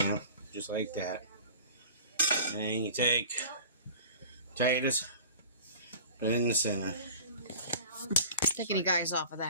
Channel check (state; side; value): inverted; both; correlation -0.42